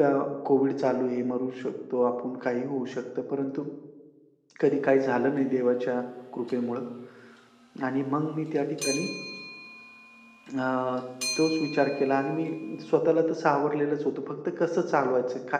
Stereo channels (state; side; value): identical; both; correlation 1.00